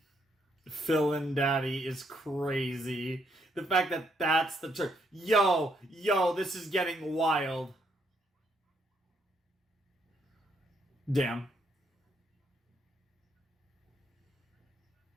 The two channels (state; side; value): normal; both; correlation 0.73